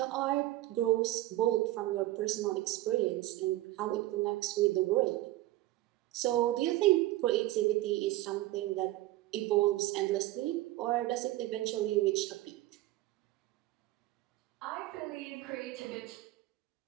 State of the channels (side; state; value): left; quieter; 16.6 dB